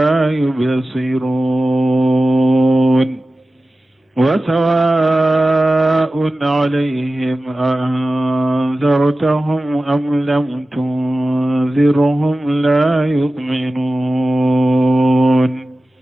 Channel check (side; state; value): both; normal; correlation 0.96